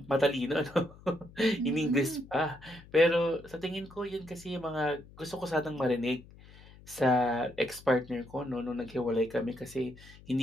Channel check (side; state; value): left; noise; hum, 21 dB below the sound